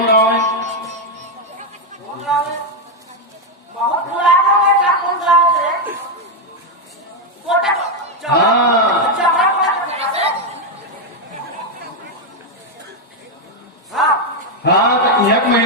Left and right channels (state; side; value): normal; both; correlation 0.03